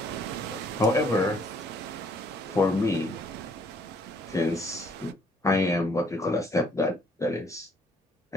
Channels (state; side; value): normal; both; correlation 0.63